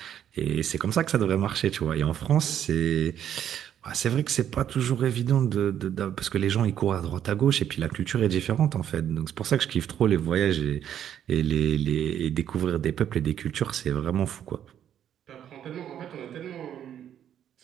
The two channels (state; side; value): quieter; left; 10.0 dB